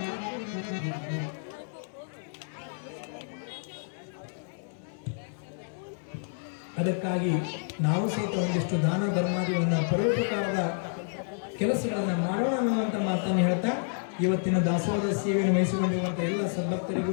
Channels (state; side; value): silent; right; digital silence